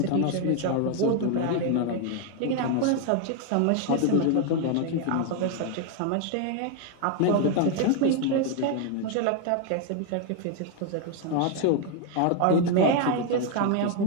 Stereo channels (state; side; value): different; both; correlation 0.00